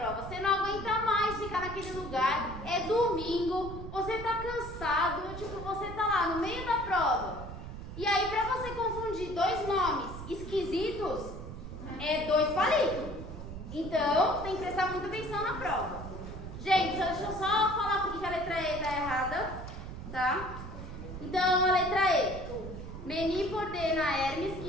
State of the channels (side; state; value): right; noise; rumble, 10 dB below the sound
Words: você não aguenta mais ficar naquele lugar, é domingo, você tá cansado, tipo, você tá lá no meio da prova. E aí, pra você confundir dois nomes esquisitos, é 2 palitos. Então, tem que prestar muita atenção na prova. Gente, deixa eu só falar porque a letra E tá errada, tá? Então, a letra E. Menipo ordena a Hermes